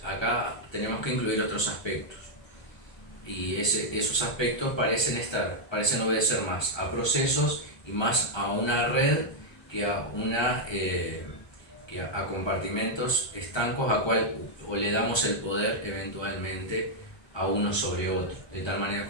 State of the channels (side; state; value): right; late; 1.3 ms